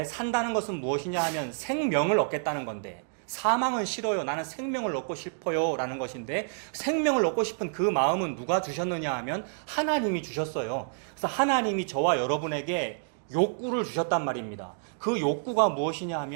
산다는 것은 무엇이냐 하면 생명을 얻겠다는 건데, 사망은 싫어요. 나는 생명을 얻고 싶어요. 라는 것인데, 생명을 얻고 싶은 그 마음은 누가 주셨느냐 하면 하나님이 주셨어요. 그래서 하나님이 저와 여러분에게 욕구를 주셨단 말입니다. 그 욕구가 무엇이냐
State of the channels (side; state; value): left; silent; digital silence